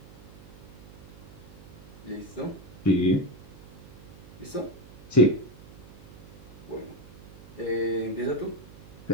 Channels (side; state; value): right; noise; hum, 18 dB below the sound